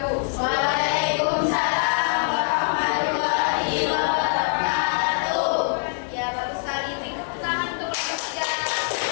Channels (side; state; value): right; silent; 62 dB below the other